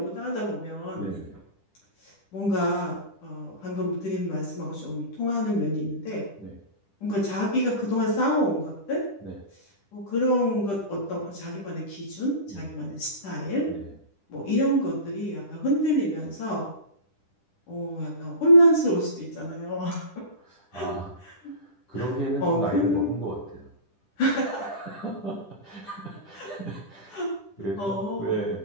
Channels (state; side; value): late; right; 10 ms